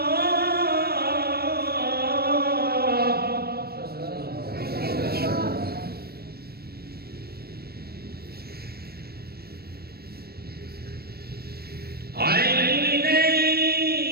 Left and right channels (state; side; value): late; left; 0.46 ms